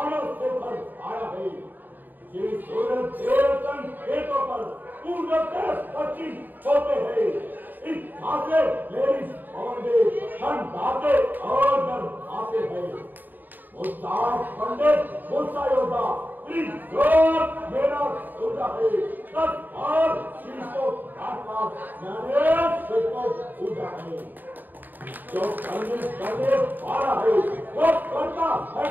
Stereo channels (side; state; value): left; late; 0.089 ms